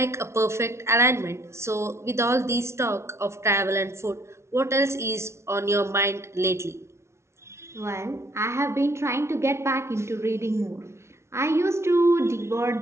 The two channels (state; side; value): late; left; 0.13 ms